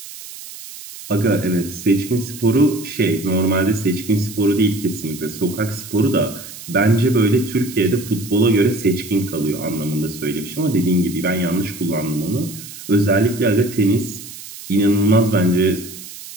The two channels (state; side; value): noise; right; hiss, 14 dB below the sound